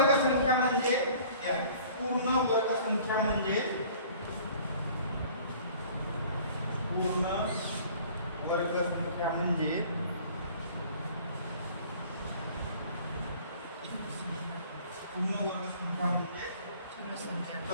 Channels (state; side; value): inverted; both; correlation -0.50